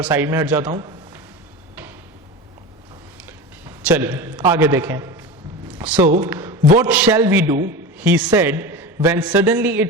साइड में हट जाता हूं। चलिए आगे देखें। So what shall we do, he said when suddenly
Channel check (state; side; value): normal; both; correlation 0.27